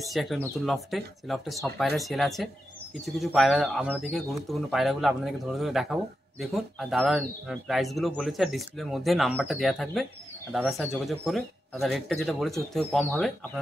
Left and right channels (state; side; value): normal; both; correlation 0.89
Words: একটা নতুন লফটে, সেই লফটে সব পায়রা সেল আছে। কিছু কিছু পায়রা আপনাদেরকে, গুরুত্বপূর্ণ পায়রাগুলো আপনাদেরকে ধরে ধরে দেখাবো। দেখুন, আর দাদার প্রাইসগুলো বলেছে, আর ডিসপ্লের মধ্যে নাম্বারটা দেওয়া থাকবে। আর দাদার সাথে যোগাযোগ করে দাদার রেটটা যেটা বলেছে ওর থেকে কম হবে,